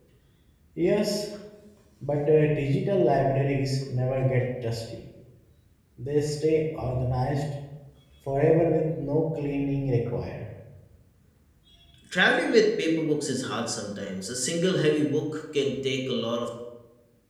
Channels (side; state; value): both; identical; correlation 1.00